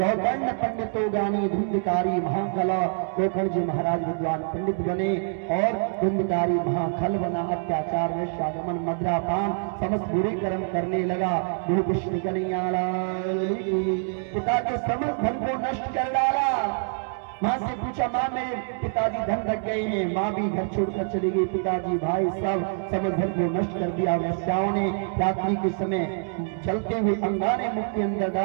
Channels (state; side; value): silent; left; digital silence